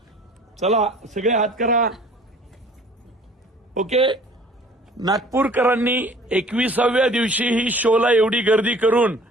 चला सगळे हात करा. ओके. नागपूरकरांनी 21व्या दिवशी ही शोला एवढी गर्दी करून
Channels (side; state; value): both; normal; correlation 0.51